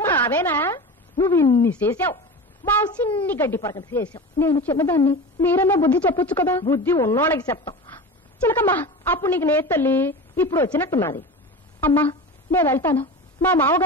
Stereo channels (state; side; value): normal; both; correlation 0.30